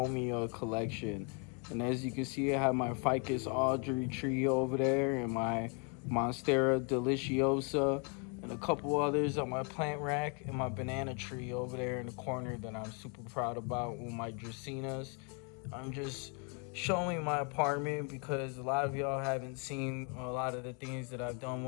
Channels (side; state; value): right; quieter; 37.6 dB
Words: collection. And as you can see, I have my Ficus Audrey tree over there and my Monstera Deliciosa and a couple others on my plant rack and my banana tree over there in the corner that I'm super proud about with my Dracaenas. I'm just showing my apartment because a lot of y'all haven't seen a lot of the things that I've done